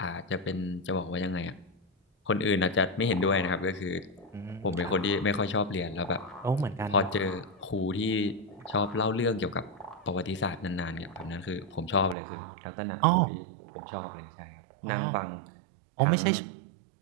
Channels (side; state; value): left; drops out; at 12.2 s